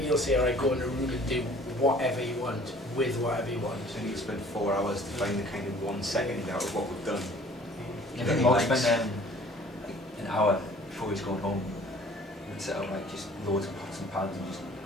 you'll say, alright, go in a room and do whatever you want with whatever you want. So you spend 4 hours to find the kind of 1 second out of what we've done. I think Mark spent like an hour before he was going home and set up like just loads of pots and pans and just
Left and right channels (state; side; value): normal; both; correlation 0.52